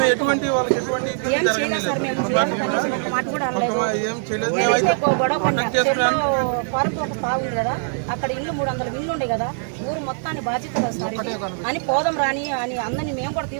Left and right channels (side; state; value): left; silent; 56 dB below the other